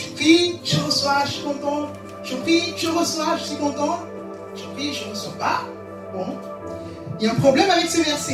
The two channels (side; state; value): both; identical; correlation 1.00